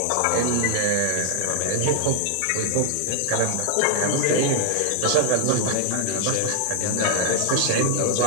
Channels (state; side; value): different; both; correlation 0.00